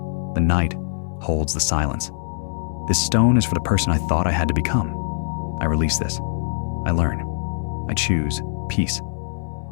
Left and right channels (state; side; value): silent; right; digital silence